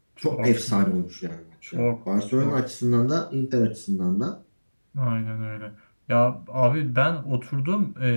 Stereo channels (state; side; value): inverted; both; correlation -1.00